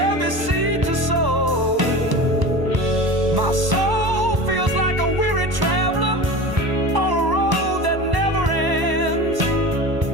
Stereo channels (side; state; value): left; late; 1.0 ms